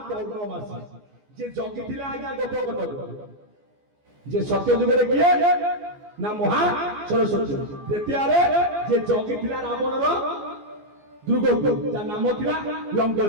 ପୌର୍ଣ୍ଣମାସୀ, ଯେ ଜଗିଥିଲା ଆଜ୍ଞା ଗୋପକଟକ। ଯେ ସତ୍ୟ ଯୁଗରେ କିଏ ନା ମହା ସରସ୍ୱତୀ। ଦ୍ୱିତୀୟରେ ଯେ ଜଗିଥିଲା ରାବଣର ଦୁର୍ଗକୁ, ଯାହା ନାମ ଥିଲା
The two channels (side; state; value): left; late; 14 ms